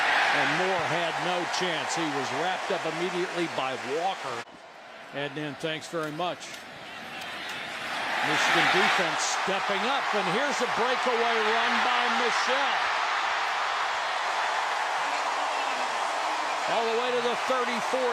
and Moore had no chance. He was wrapped up immediately by Walker. Heading in, thanks very much. Michigan defense stepping up, and here's a breakaway run by Michelle. All the way to the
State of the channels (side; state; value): both; identical; correlation 1.00